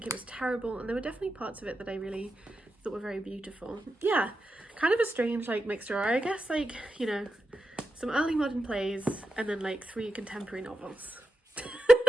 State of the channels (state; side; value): normal; both; correlation 0.88